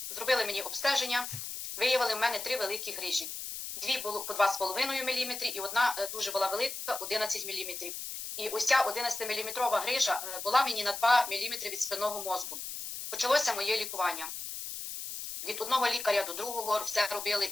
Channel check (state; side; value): noise; left; hiss, 7 dB below the sound